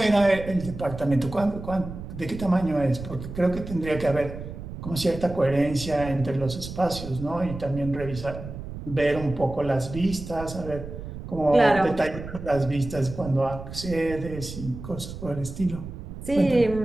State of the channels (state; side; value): noise; right; rumble, 10 dB below the sound